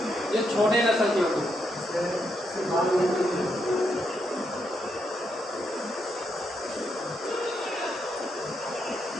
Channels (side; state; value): both; normal; correlation 0.80